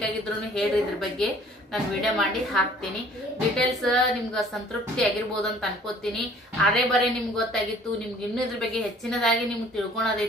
ಹೇಳ್ರಿ, ಇದ್ರ ಬಗ್ಗೆ ನಾನು ವಿಡಿಯೋ ಮಾಡಿ ಹಾಕ್ತೀನಿ. ಡೀಟೇಲ್ಸ್ ನಿಮ್ಗೆ ಸಂತೃಪ್ತಿ ಆಗಿರ್ಬೋದು ಅಂತ ಅನ್ಕೋತೀನಿ. ಅರೆ ಬರೇ ನಿಮ್ಗೆ ಗೊತ್ತಾಗಿತ್ತು, ನಿಮ್ಗೆ ಇನ್ನೂ ಇದ್ರ ಬಗ್ಗೆ ಹೆಚ್ಚಿನದಾಗಿ ನಿಮ್ಗೆ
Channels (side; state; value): both; normal; correlation 0.54